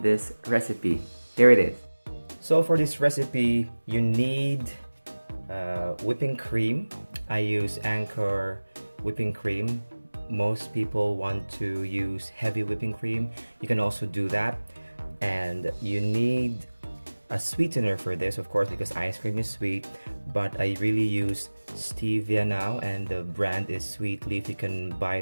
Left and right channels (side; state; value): both; inverted; correlation -1.00